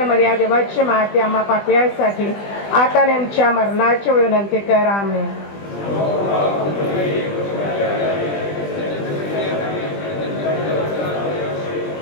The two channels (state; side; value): late; right; 20 ms